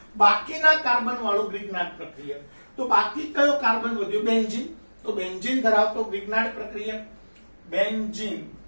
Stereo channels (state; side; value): inverted; both; correlation -1.00